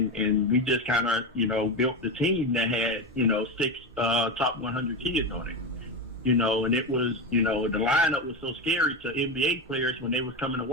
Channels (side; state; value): both; normal; correlation 0.16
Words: we just kind of, built the team that had, 6 top 100 kids on it, and it was, the lineup was so scary to NBA players when they was coming to